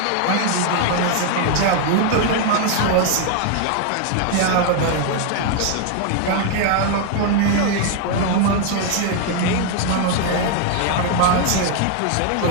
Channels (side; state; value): both; different; correlation 0.00